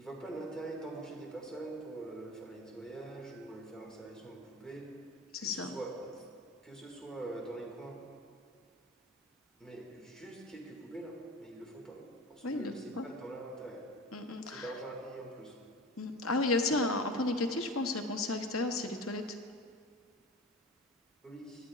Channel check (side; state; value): both; normal; correlation 0.34